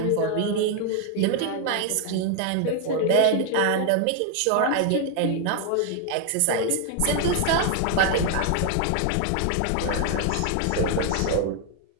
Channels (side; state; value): both; different; correlation 0.00